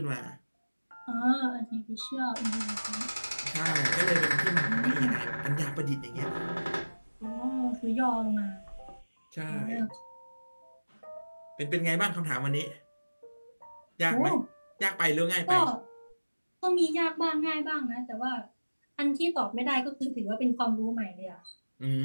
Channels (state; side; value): inverted; both; correlation -1.00